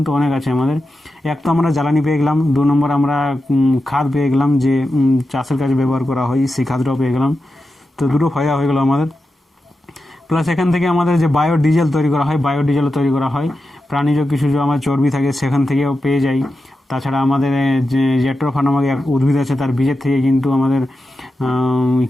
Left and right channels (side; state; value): both; normal; correlation 0.90